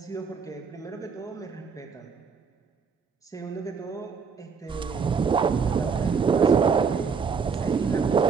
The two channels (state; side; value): quieter; left; 5.8 dB